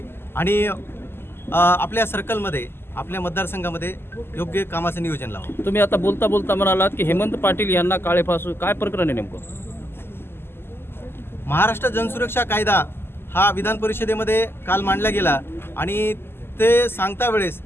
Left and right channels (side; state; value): right; late; 0.11 ms